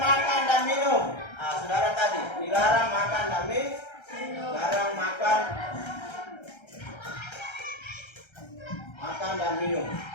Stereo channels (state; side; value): late; right; 1.3 ms